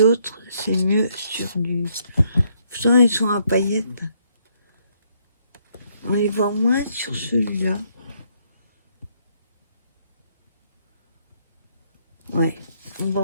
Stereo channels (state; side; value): inverted; both; correlation -0.70